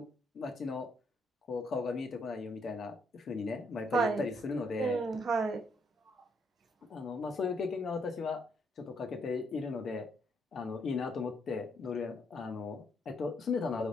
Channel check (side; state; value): both; normal; correlation 0.73